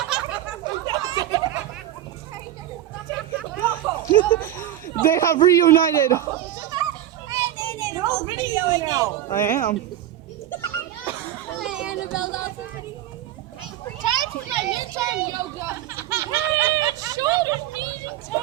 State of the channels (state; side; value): quieter; left; 12.4 dB